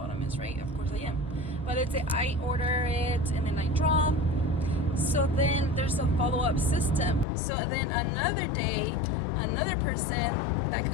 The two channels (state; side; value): drops out; right; at 7.2 s